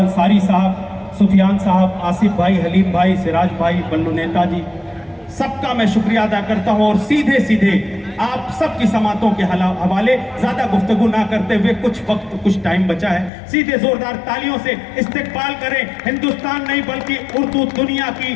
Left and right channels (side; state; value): right; drops out; at 13.3 s